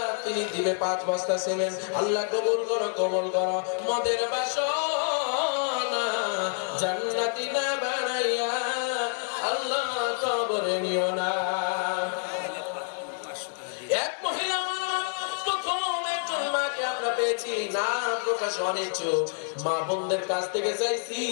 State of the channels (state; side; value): silent; right; 57 dB below the other